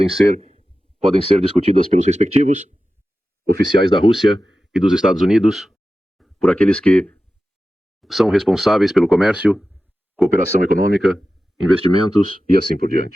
ser discutidas pelos respectivos oficiais da Rússia e dos Estados Unidos, por aqueles que são responsáveis pelo comércio, cooperação econômica, investimentos e assim por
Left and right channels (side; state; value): both; normal; correlation 0.94